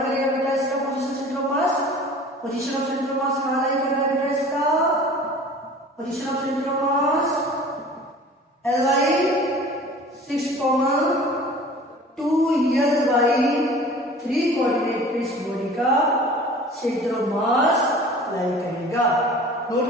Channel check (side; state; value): both; normal; correlation 0.44